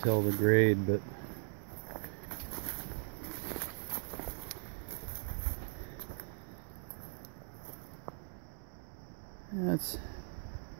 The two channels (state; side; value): silent; left; 52 dB below the other